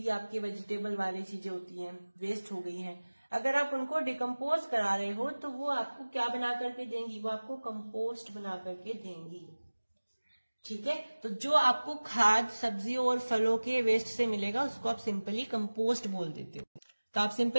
आपके वेजिटेबल वाली चीजें होती हैं वेस्ट हो गई हैं, अगर आप उनको डिकम्पोज करा रहे हो तो वो आपको क्या बना करके देंगी, वो आपको कंपोस्ट बना करके देंगी। ठीक है, तो जो आपको खाद सब्जियों और फलों के वेस्ट से मिलेगा उसको आप सिंपली कंपोस्ट बोल देते हो। तो आप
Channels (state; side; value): inverted; both; correlation -1.00